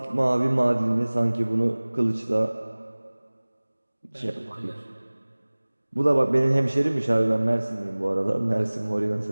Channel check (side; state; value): both; inverted; correlation -1.00